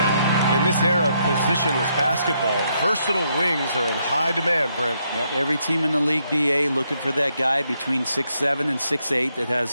In this era of positionless basketball, versatile wings are in high demand, Brent. Yep, every team in the league, BA, looking for that guy between 6'7" and 6'8" that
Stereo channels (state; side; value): inverted; both; correlation -0.76